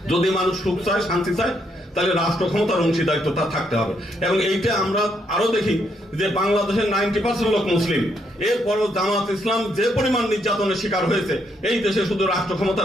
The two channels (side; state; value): both; normal; correlation 0.75